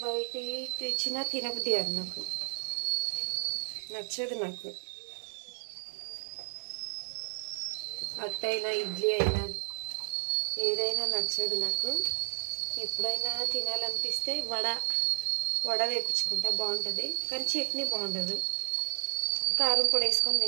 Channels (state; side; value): silent; left; digital silence